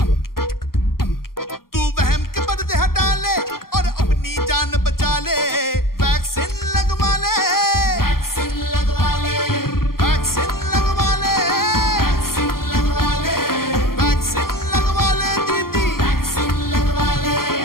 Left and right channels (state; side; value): late; right; 0.92 ms